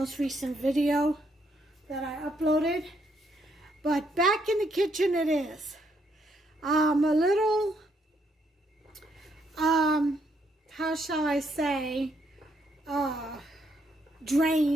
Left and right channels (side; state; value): both; normal; correlation 0.74